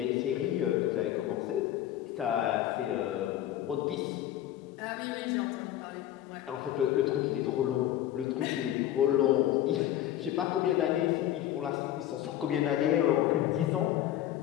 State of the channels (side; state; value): right; quieter; 12.4 dB